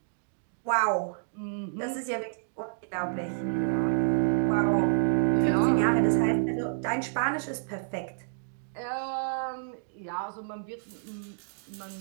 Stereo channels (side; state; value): left; silent; digital silence